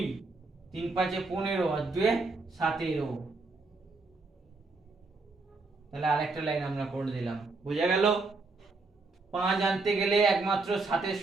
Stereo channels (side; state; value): left; quieter; 3.6 dB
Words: 3 5 15 আর 2 17। তাহলে আরেকটা লাইন আমরা করে দিলাম, বোঝা গেল? 5 আনতে গেলে একমাত্র 7 এর